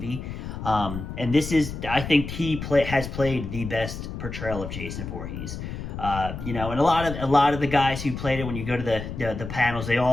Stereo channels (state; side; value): noise; left; rumble, 7 dB below the sound